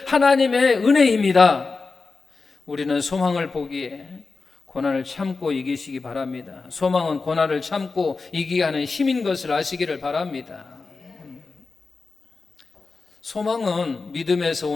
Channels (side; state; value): right; quieter; 4.2 dB